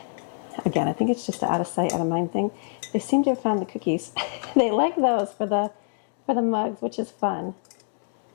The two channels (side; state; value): right; silent; 61 dB below the other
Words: Again, I think it's just an out of sight, out of mind thing. They seem to have found the cookies. They like those for the mugs, which is fun.